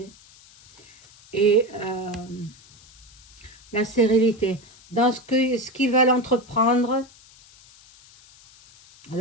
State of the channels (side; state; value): left; noise; hiss, 25 dB below the sound